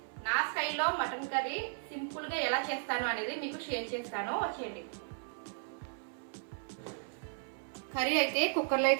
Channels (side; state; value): left; silent; 54 dB below the other